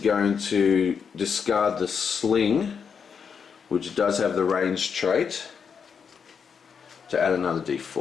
to discard the sling, which does have the range trait, to add another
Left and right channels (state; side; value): quieter; right; 6.5 dB